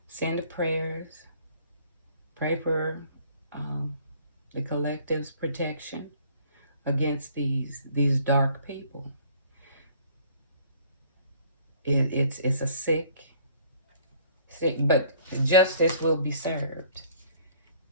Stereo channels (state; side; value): inverted; both; correlation -0.56